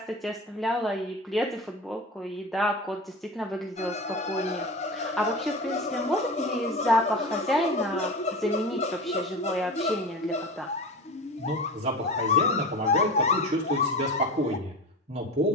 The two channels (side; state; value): both; normal; correlation 0.30